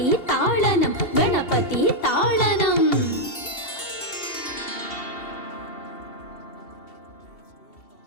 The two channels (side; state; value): right; late; 2.7 ms